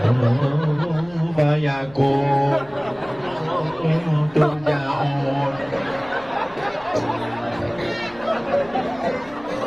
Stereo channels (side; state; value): left; noise; rumble, 23 dB below the sound